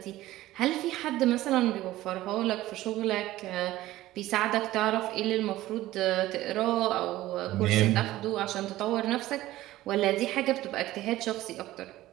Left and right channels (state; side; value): quieter; left; 15.9 dB